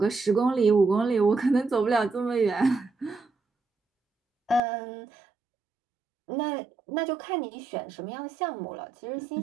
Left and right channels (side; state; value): left; drops out; at 4.6 s